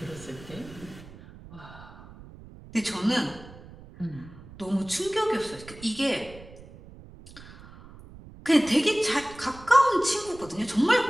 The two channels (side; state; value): right; noise; rumble, 18 dB below the sound